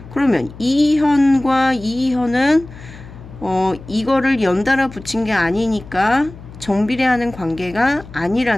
그러면 이 현과 이 현은 이거를 연달아 붙인 게 아니니까 정비례하는 관계가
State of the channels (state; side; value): noise; left; hum, 17 dB below the sound